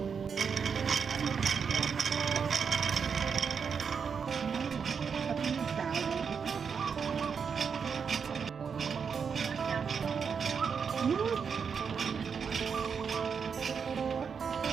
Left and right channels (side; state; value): left; quieter; 6.3 dB